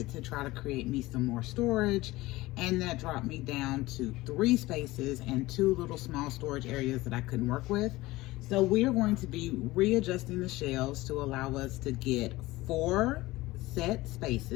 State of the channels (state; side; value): quieter; right; 19.2 dB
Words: to try to create me some more storage, and that dropped me down to 3 spaces and 2 little small storage areas that I couldn't work with. So we are going to be readjusting the shelves to allow us to get 4 set